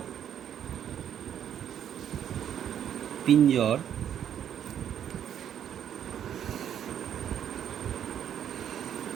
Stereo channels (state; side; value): quieter; left; 9.6 dB